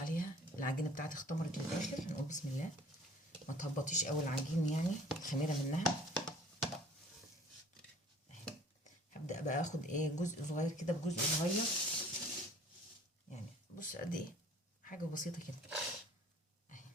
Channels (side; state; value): both; normal; correlation 0.52